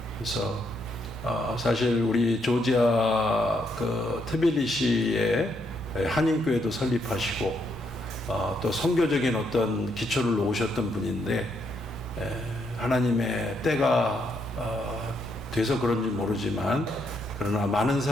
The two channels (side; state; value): both; normal; correlation 0.76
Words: 그래서 사실 우리 조지아 트빌리시에 한인교회도 설립하시고 또 선교적인 어떤 기초를 놓으셨던 분인데 하나님의 때가 돼서 그런지 모르지만 그러나 많은